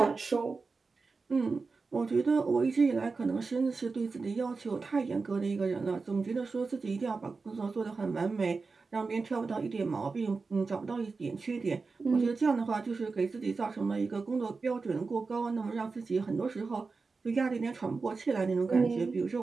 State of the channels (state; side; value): quieter; left; 4.3 dB